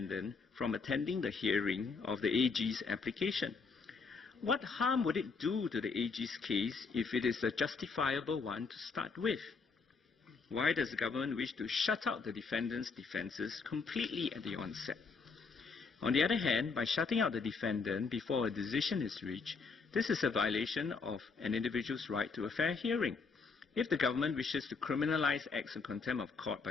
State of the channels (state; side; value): quieter; right; 4.8 dB